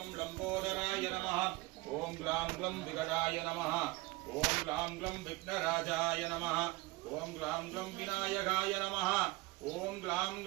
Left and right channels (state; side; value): quieter; left; 21.5 dB